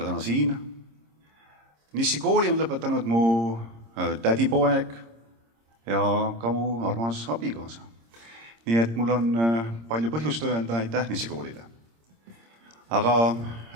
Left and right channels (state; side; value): late; left; 26 ms